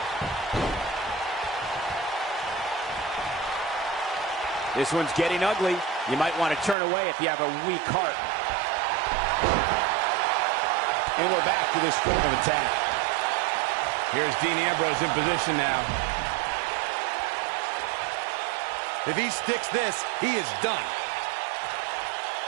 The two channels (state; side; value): drops out; left; at 6.8 s